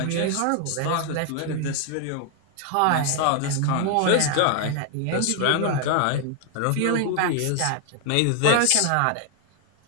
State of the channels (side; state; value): both; different; correlation 0.00